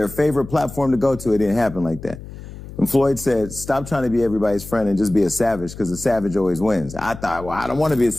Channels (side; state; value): left; noise; hum, 14 dB below the sound